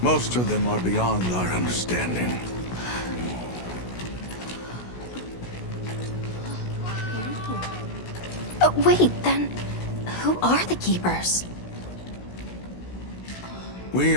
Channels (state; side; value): late; right; 16 ms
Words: Most of them are beyond our understanding. Wait, then who are the Keepers? We